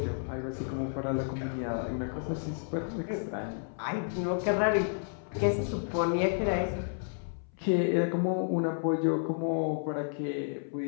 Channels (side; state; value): right; silent; 57 dB below the other